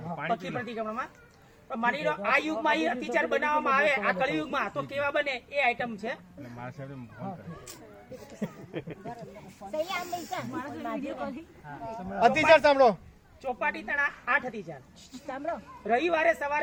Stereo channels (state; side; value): identical; both; correlation 1.00